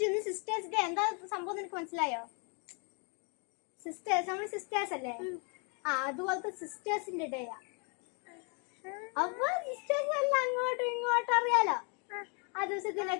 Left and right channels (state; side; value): quieter; right; 36.4 dB